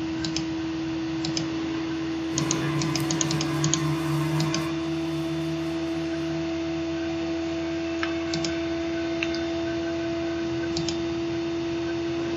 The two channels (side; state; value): both; identical; correlation 1.00